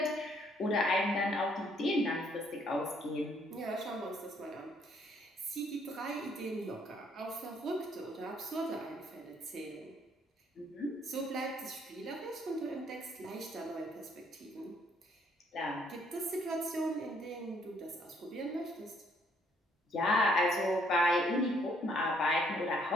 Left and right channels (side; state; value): both; normal; correlation 0.67